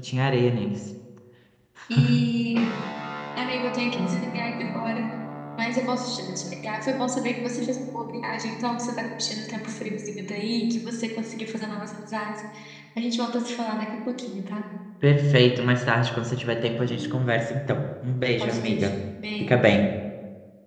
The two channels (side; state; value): both; identical; correlation 1.00